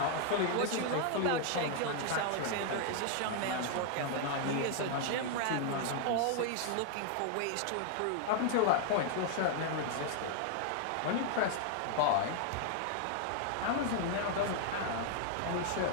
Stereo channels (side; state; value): both; different; correlation 0.00